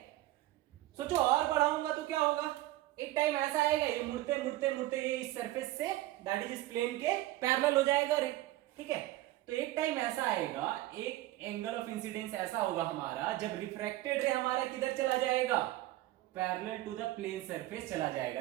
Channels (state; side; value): quieter; left; 16.3 dB